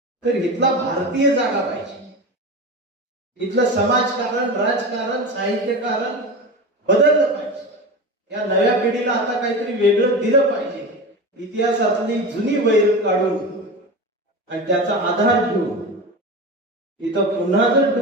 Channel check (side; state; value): both; normal; correlation 0.26